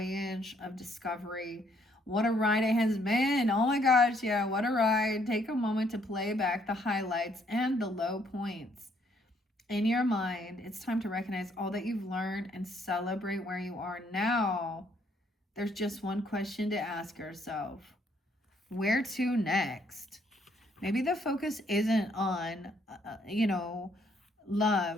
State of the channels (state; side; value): normal; both; correlation 0.68